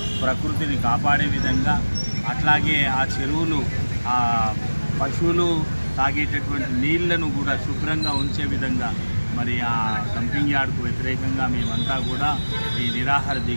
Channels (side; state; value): both; inverted; correlation -1.00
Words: ప్రకృతిని కాపాడే విధంగా, అట్లాగే ఆ చెరువులు ఆ పశువులు తాగేటటువంటి నీళ్లను కూడా శుభ్రంగా ఉంచే విధంగా మరి ఆ డంపింగ్ యార్డుకు వ్యతిరేకంగా మేమంతా కూడా ఈ నిరాహార